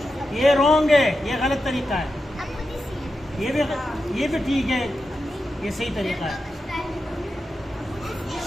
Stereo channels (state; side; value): normal; both; correlation 0.89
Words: ये रॉन्ग है, ये गलत तरीका है। ये भी ठीक है, ये सही तरीका है।